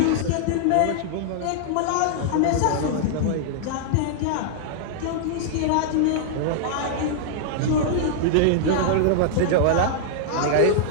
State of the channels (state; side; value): different; both; correlation -0.01